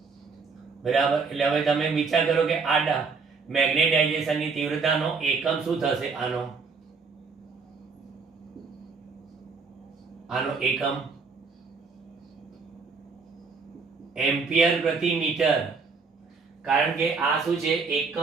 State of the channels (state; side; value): quieter; left; 4.8 dB